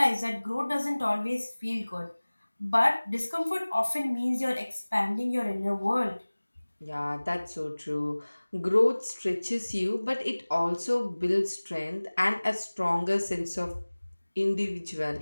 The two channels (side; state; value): both; inverted; correlation -1.00